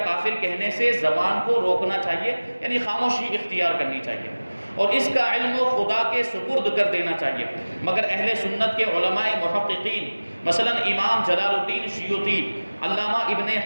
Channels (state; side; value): inverted; both; correlation -1.00